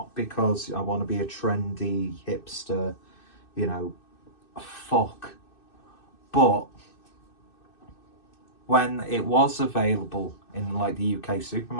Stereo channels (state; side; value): late; right; 2.6 ms